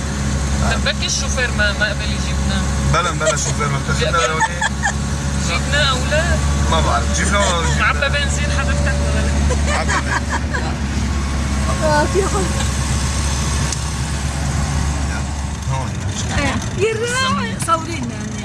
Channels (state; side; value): identical; both; correlation 1.00